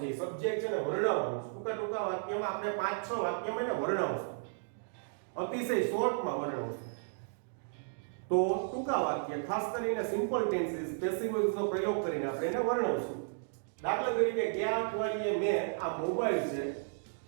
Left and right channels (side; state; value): left; silent; digital silence